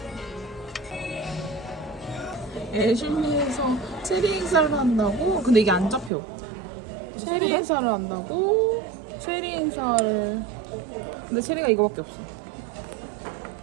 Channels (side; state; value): left; drops out; at 6.1 s